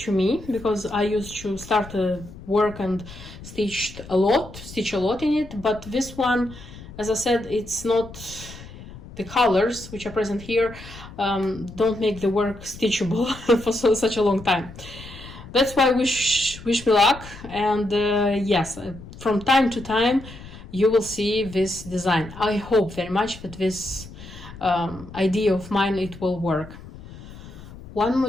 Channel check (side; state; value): left; noise; rumble, 16 dB below the sound